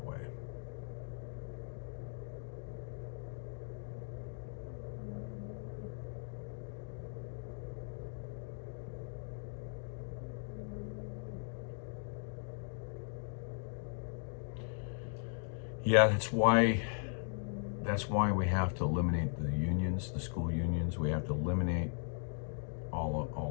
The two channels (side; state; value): right; silent; 52 dB below the other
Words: way. Yeah, that's why we have to eliminate the unions, the school unions. We have to eliminate